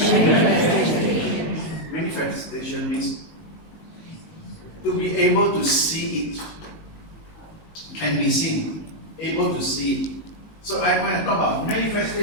Manifestation means to be able to see it. Can be seen. Able to see it. So when I talk about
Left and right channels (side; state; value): right; late; 19 ms